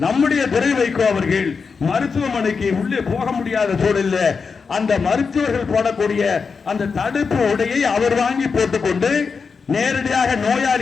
நம்முடைய துரை வைகோ அவர்கள் மருத்துவமனைக்கு உள்ளே போக முடியாத சூழலில் அந்த மருத்துவர்கள் போடக்கூடிய அந்த தடுப்பு உடையை அவர் வாங்கி போட்டுக்கொண்டு நேரடியாக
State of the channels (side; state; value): right; quieter; 5.2 dB